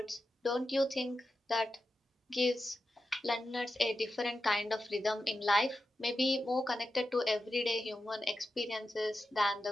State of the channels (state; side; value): normal; both; correlation 0.90